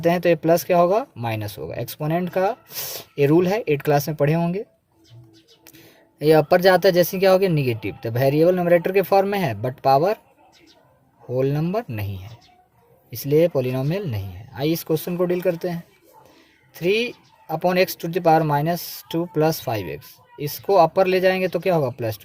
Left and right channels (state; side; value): identical; both; correlation 1.00